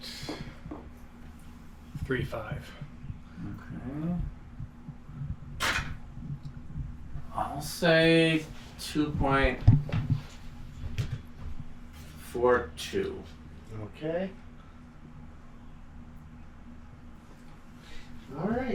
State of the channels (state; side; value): identical; both; correlation 1.00